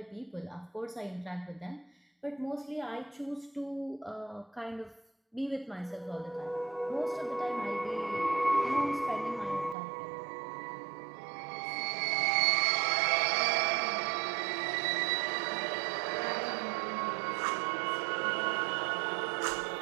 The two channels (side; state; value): left; drops out; at 9.8 s